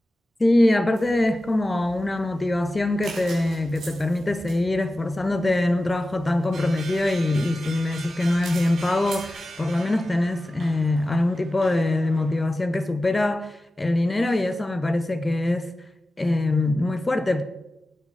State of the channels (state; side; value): normal; both; correlation 0.94